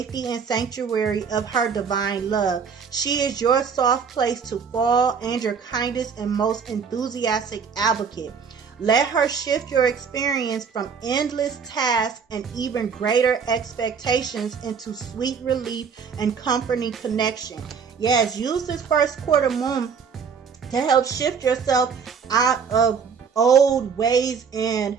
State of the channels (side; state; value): left; quieter; 6.2 dB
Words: and sanctuary of her divine love. She is your soft place to fall and your kindest and most enthusiastic advocate. Let her shift your experience from endless tasks and even greater expectations into sweet relief and comforting connection. Yes, use this first quarter moon to help shift yourself out of old ways and